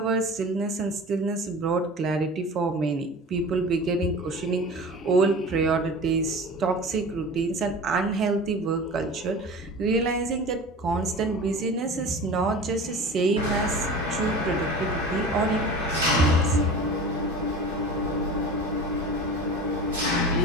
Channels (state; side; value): normal; both; correlation 0.36